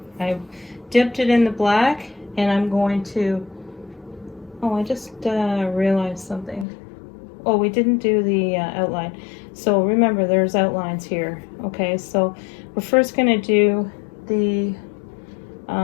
I dipped it in the black and I'm going to, oh, I just realized something. Oh, we didn't do the outline. So remember, there's outlines here. Okay, so we're first going to do the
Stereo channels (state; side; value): drops out; right; at 6.7 s